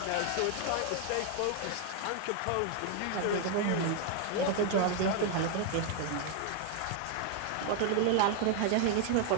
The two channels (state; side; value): different; both; correlation 0.01